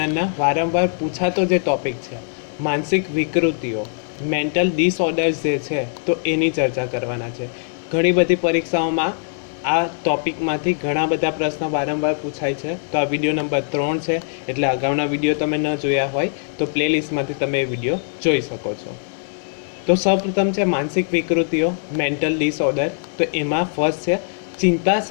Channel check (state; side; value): silent; right; 65 dB below the other